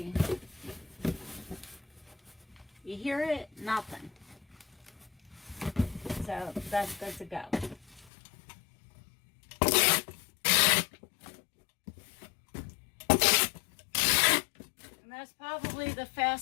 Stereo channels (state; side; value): drops out; right; at 8.1 s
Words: You hear it? Nothing. So that's good to go. And that's probably the